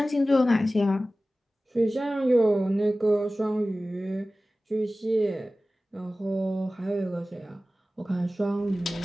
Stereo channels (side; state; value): both; normal; correlation 0.96